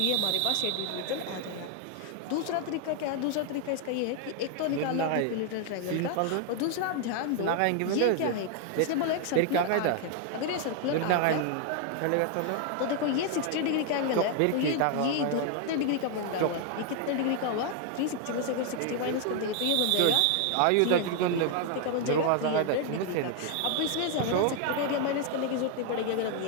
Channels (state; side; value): different; both; correlation 0.00